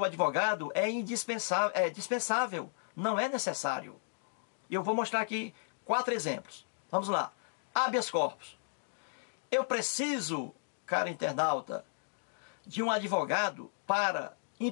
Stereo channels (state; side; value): silent; right; digital silence